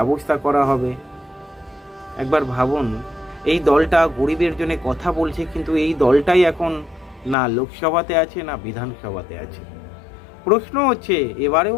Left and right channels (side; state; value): right; drops out; at 7.4 s